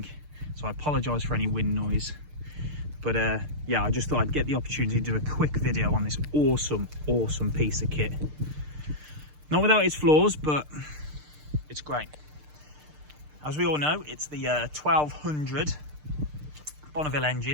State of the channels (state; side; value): late; left; 6.6 ms